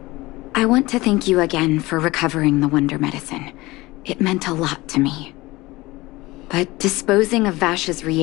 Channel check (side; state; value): right; quieter; 20.5 dB